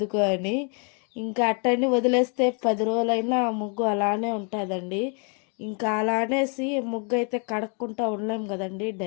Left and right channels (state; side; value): quieter; right; 38.7 dB